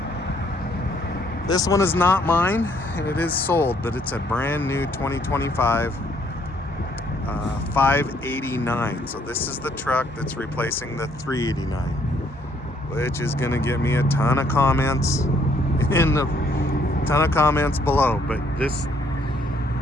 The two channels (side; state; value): both; normal; correlation 0.67